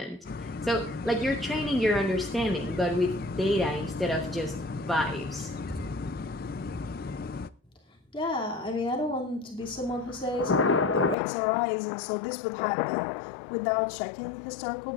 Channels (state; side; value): drops out; right; at 11.2 s